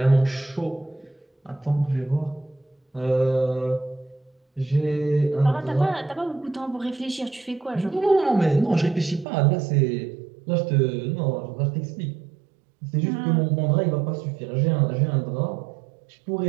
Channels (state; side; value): drops out; left; at 9.2 s